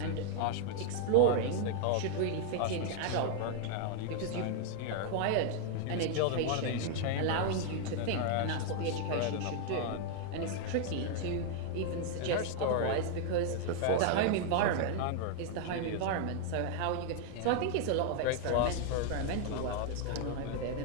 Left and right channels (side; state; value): both; different; correlation 0.00